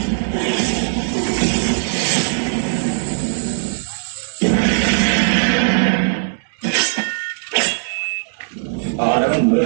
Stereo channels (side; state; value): left; silent; digital silence